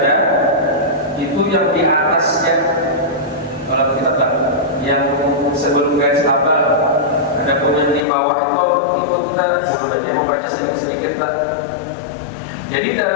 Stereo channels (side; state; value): right; drops out; at 8.1 s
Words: itu yang di atasnya. Kalau kita yang sebelum garis tabel, ada pun yang di bawah itu kita sebenarnya membaca sedikit-sedikit. Jadi